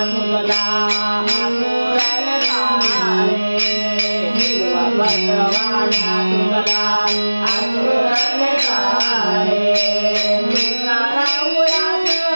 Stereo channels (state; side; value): inverted; both; correlation -1.00